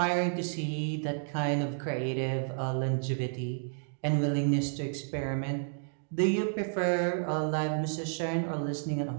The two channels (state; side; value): silent; left; digital silence